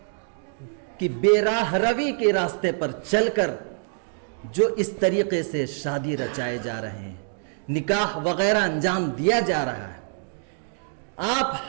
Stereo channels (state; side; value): silent; left; digital silence